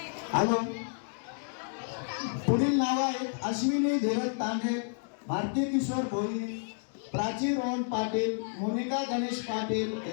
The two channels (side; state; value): right; silent; digital silence